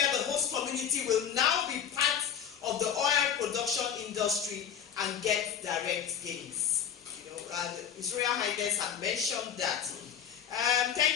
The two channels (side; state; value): right; quieter; 8.5 dB